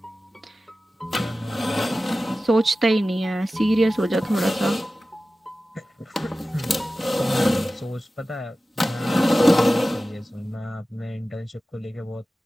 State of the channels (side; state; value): both; normal; correlation 0.95